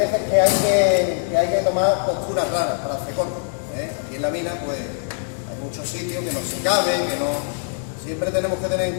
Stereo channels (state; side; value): silent; right; 64 dB below the other